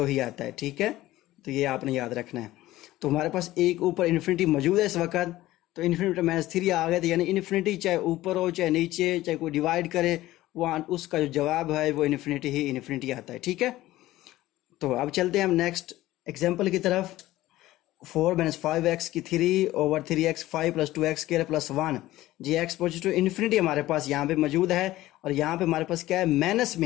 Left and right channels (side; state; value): right; quieter; 16.2 dB